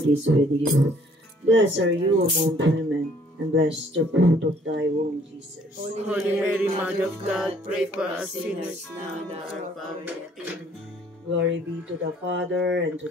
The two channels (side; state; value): both; normal; correlation 0.61